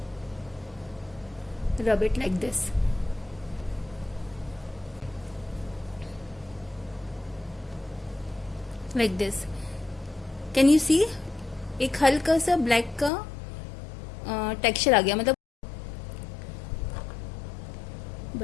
rub it like this. Like this. Can you see? एक हल्का सा ब्लैक का टेक्सचर आ गया, मतलब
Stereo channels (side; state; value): right; drops out; at 13.1 s